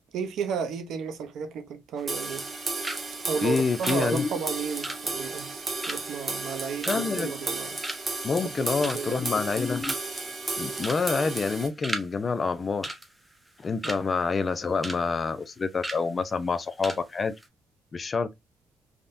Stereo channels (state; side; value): normal; both; correlation 0.82